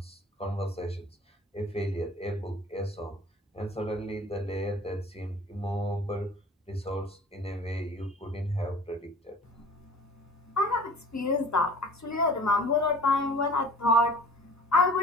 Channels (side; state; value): both; normal; correlation 0.45